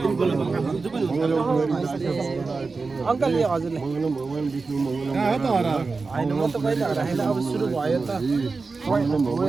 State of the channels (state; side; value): quieter; left; 4.2 dB